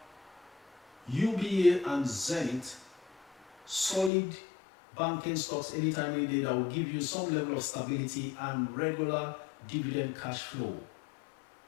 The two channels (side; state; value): right; drops out; at 4.1 s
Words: UBA and Zenith, solid banking stocks anytime, any day, that will give you some level of stability and regular dividend cash flow.